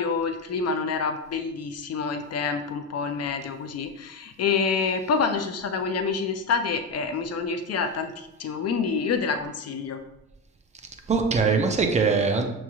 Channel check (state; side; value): normal; both; correlation 0.16